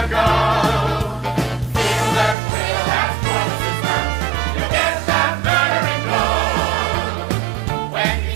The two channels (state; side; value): drops out; left; at 2.4 s